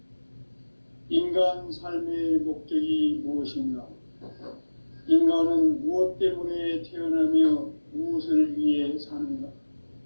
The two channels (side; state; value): both; inverted; correlation -1.00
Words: 인간 삶의 목적이 무엇인가? 인간은 무엇 때문에 태어나며 무엇을 위해 사는가?